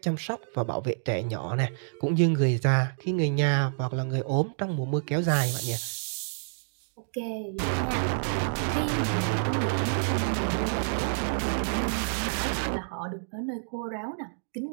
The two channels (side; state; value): left; silent; digital silence